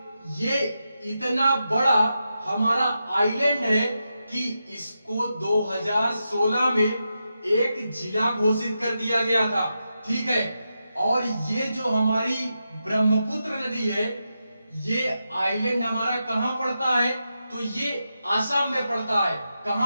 ये इतना बड़ा हमारा आइलैंड है कि इसको 2016 में एक जिला घोषित कर दिया गया था। ठीक है, और ये जो हमारी ब्रह्मपुत्र नदी है, ये आइलैंड हमारा कहां पड़ता है? तो ये आसाम में पड़ता है।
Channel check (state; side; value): inverted; both; correlation -0.88